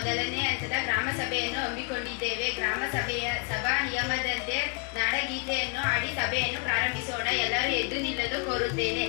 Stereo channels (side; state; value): right; quieter; 33.6 dB